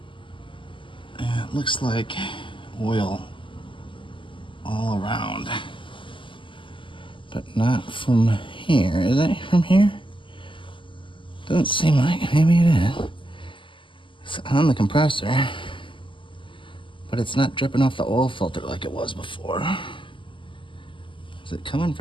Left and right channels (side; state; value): right; late; 0.25 ms